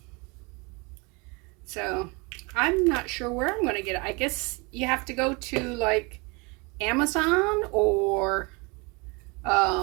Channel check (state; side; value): quieter; left; 28.6 dB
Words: So I'm not sure where I'm going to get it. I guess you have to go to like Amazon or